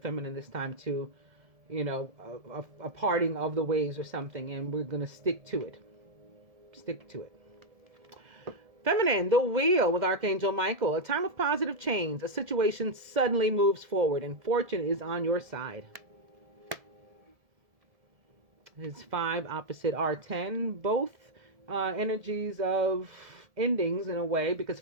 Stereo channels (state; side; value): late; left; 1.7 ms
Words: this time to, a parting of the ways or something. And we're going to stick to it. Stick to it. Feminine, the wheel with Archangel Michael. A time of positive change. A situation suddenly moves forward and fortune is on your side. It's 5 opposite R10. Both energies of endings in a way, because